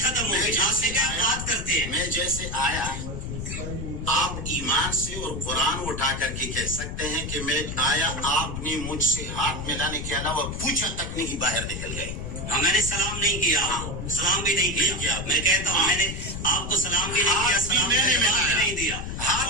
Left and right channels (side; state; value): left; noise; rumble, 6 dB below the sound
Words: ختم ہو گئی. آپ نے کیا بات کرتے ہیں؟ میں جیسے آیا آپ ایمان سے اور قرآن اٹھا کر کے کہہ سکتے ہیں کہ میں آیا, آپ نے مجھ سے ہاتھ ملانے کے علاوہ پوچھا تک نہیں باہر نکل گئے. میں نے سلام نہیں کیا, سلام بھی نہیں کیا. میں کہتا ہوں میں نے آپ کو سلام بھی نہیں کیا, سلام میں نے نہیں دیا.